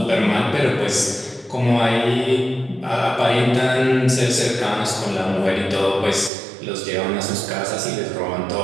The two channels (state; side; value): drops out; left; at 6.3 s